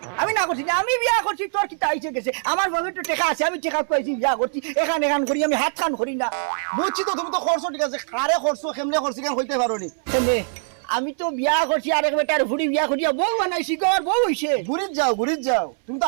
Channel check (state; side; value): silent; left; 64 dB below the other